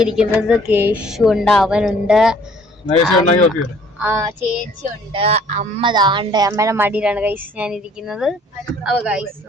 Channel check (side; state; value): both; normal; correlation 0.57